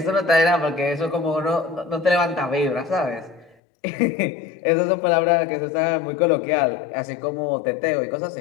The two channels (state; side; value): drops out; right; at 3.6 s